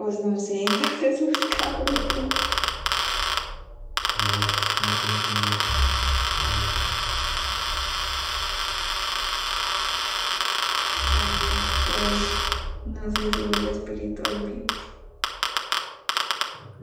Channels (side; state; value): both; identical; correlation 1.00